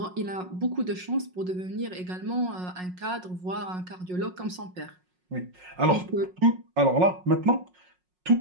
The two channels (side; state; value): left; late; 5.5 ms